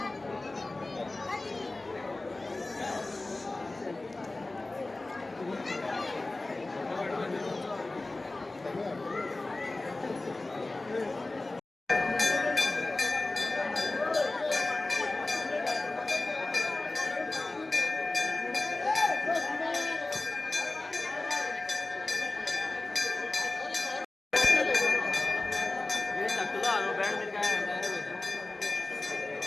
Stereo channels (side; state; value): right; quieter; 3.0 dB